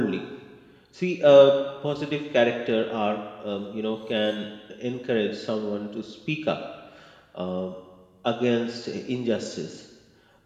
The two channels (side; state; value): both; identical; correlation 1.00